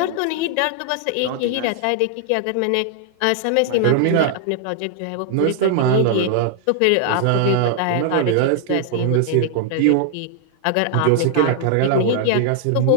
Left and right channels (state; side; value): different; both; correlation 0.00